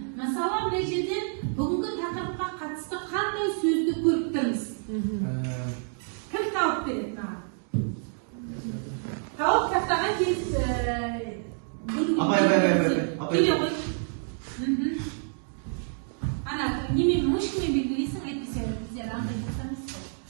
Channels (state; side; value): silent; left; 59 dB below the other